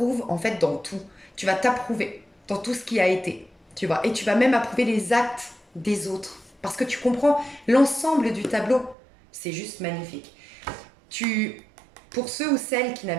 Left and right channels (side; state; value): left; drops out; at 9.0 s